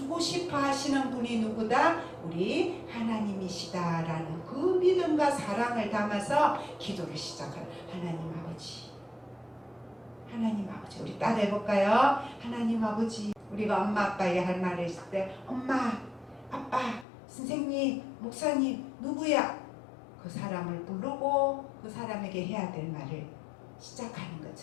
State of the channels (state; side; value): drops out; right; at 17.1 s